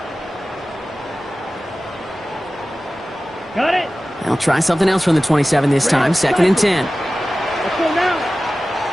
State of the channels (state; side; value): normal; both; correlation 0.96